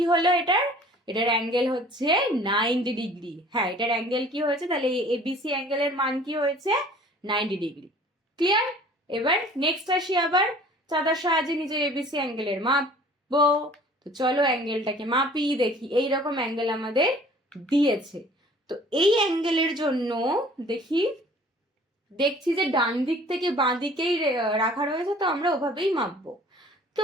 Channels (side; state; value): both; normal; correlation 0.50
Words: হলো এটার অ্যাঙ্গেল হচ্ছে 90 ডিগ্রি। হ্যাঁ, এটার অ্যাঙ্গেল কি হয়েছে, তাহলে এবিসি অ্যাঙ্গেলের মান কি হয়েছে 90 ডিগ্রি। ক্লিয়ার? এবার নেক্সট আসি, আবার চাঁদার সাহায্যে নিজের এবিসি অ্যাঙ্গেলের মাপবো। তো চলো অ্যাঙ্গেলটাকে মাপি, দেখি এইরকম অ্যাঙ্গেল আমাদের দিয়েছে। তো এই অ্যাঙ্গেলের জন্য দেখছি যে ডান দিক থেকে বাঁ দিকেই রাখা রয়েছে, তো আমরা ওভাবেই মাপবো।